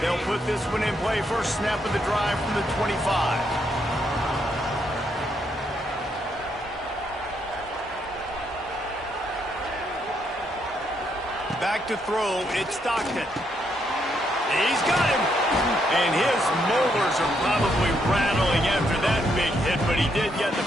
put this one in play. First snap of the drive from the 25. Back to throw. It's Stockton. He's got him. And his molars are probably rattling after that big hit, but he did get the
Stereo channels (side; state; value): both; normal; correlation 0.76